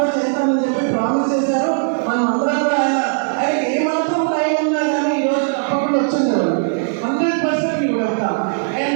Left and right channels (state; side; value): silent; left; digital silence